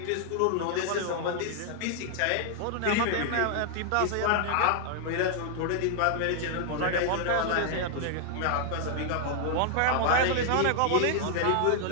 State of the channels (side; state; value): both; different; correlation -0.01